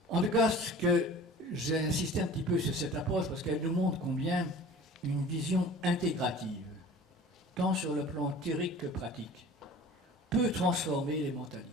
En tout cas, ce que j'ai insisté un petit peu sur cette approche, parce qu'elle nous montre combien une vision intégrative, tant sur le plan théorique que pratique, peut transformer les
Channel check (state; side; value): normal; both; correlation 0.43